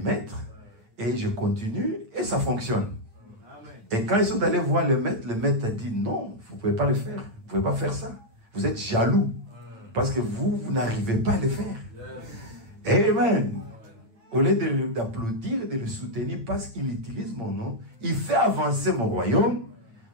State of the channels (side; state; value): left; late; 8.9 ms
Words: maître et je continue et ça fonctionne. Et quand ils sont allés voir le maître a dit, non, vous ne pouvez pas le faire. Vous ne pouvez pas faire ça. Vous êtes jaloux. Parce que vous n'arrivez pas à le faire. Amen. Au lieu d'applaudir, de le soutenir parce qu'il utilise mon nom, il fait avancer mon royaume,